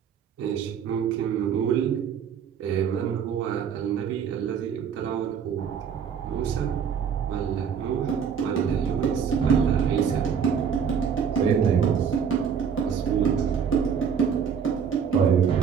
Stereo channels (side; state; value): left; quieter; 7.3 dB